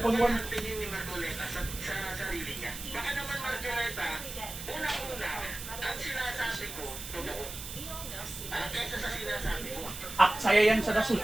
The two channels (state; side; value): noise; right; hiss, 9 dB below the sound